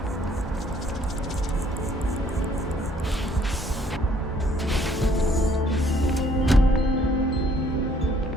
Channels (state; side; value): normal; both; correlation 0.63